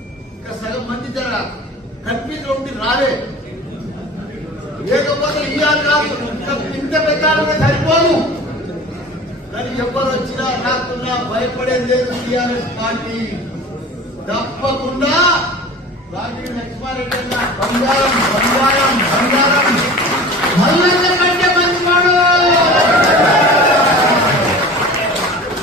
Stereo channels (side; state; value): both; normal; correlation 0.39